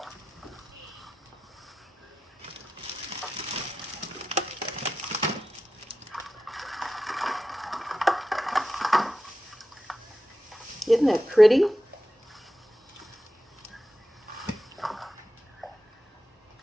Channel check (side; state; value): both; normal; correlation 0.92